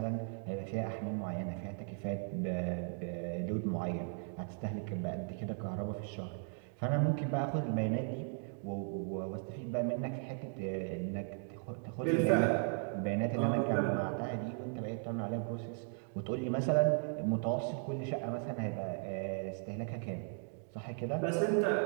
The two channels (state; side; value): silent; left; 53 dB below the other